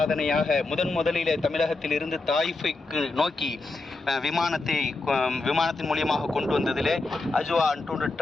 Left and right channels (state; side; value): quieter; right; 3.4 dB